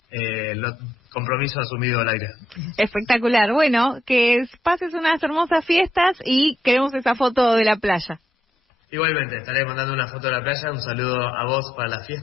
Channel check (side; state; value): both; normal; correlation 0.79